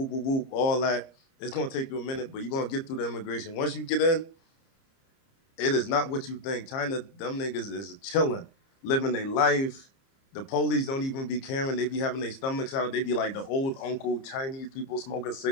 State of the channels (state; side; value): late; right; 30 ms